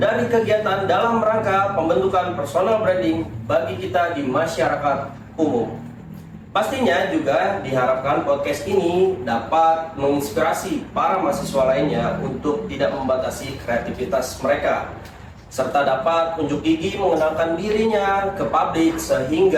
kegiatan dalam rangka pembentukan personal branding bagi kita di masyarakat umum. Pastinya juga diharapkan podcast ini dapat menginspirasi para mahasiswa lainnya untuk tidak membatasi kreativitas mereka, serta dapat unjuk gigi mengenalkan dirinya ke publik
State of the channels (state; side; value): identical; both; correlation 1.00